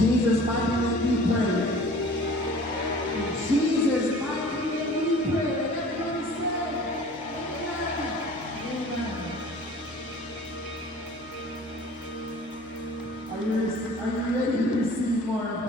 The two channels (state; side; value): normal; both; correlation 0.46